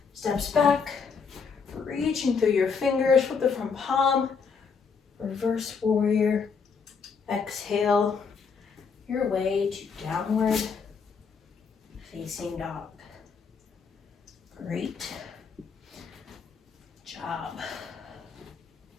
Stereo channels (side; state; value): right; quieter; 5.6 dB